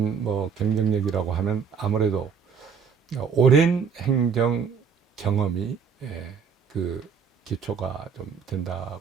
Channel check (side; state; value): left; quieter; 6.3 dB